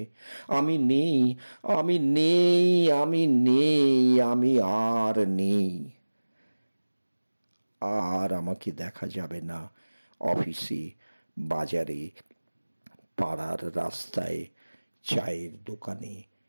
আমি নেই, আমি নেই, আমি নেই, আমি আর নেই। আর আমাকে দেখা যাবে না অফিসে, বাজারে, পাড়ার রাস্তায়, চায়ের দোকানে,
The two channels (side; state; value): both; inverted; correlation -1.00